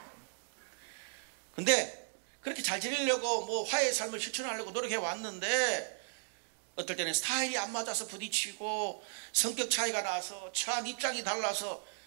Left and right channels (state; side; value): silent; left; digital silence